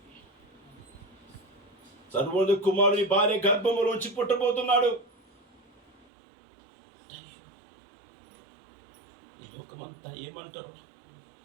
సర్వోన్నత కుమారుడు నీ భార్య గర్భములోంచి పుట్టబోతున్నాడు. ఈ లోకమంతా ఏమంటారు?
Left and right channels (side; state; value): left; drops out; at 6.1 s